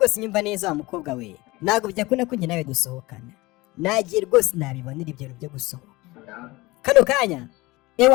nyumva neza wa mukobwa we, ntabwo byakunda ko njye nawe dusohokana, nagiye rwose nabibonera ibyo bintu byo gusohoka kano kanya.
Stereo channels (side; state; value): right; quieter; 21.4 dB